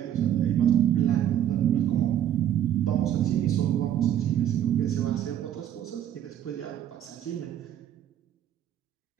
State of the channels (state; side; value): quieter; left; 10.7 dB